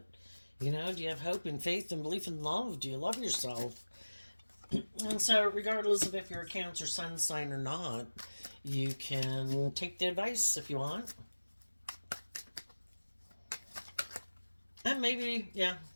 do you have hope and faith and belief in love? Do you love yourself? And so, regardless of if you're a Cancer sun sign or not, you can take the advice if you want. And maybe, yeah,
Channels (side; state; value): both; inverted; correlation -1.00